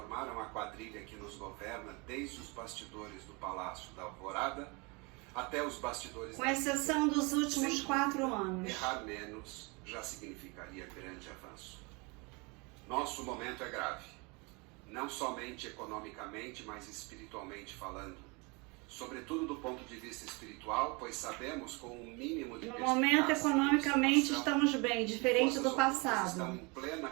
a quadrilha que nos governa desde os bastidores do Palácio da Alvorada até os bastidores... Com exceção dos últimos 4 anos. Errar menos já significaria grande avanço. Nosso momento é grave. Não somente economicamente, mas espiritualmente falando. Sobretudo do ponto de vista espiritual, pois sabemos com um mínimo de no momento, economicamente, estamos bem, diferente do passado. Estão em plena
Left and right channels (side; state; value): left; quieter; 29.0 dB